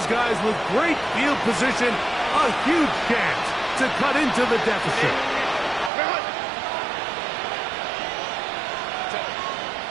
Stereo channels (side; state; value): left; drops out; at 5.9 s